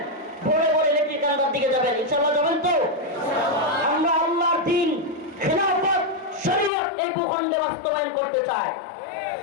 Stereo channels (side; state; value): right; drops out; at 6.7 s